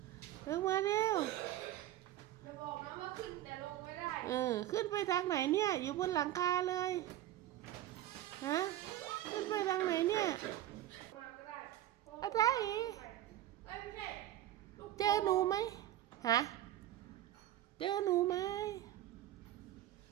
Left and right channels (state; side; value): quieter; left; 13.4 dB